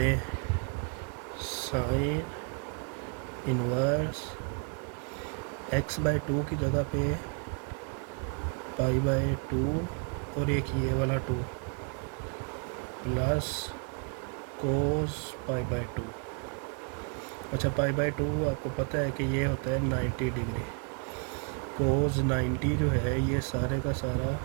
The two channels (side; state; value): left; quieter; 38.1 dB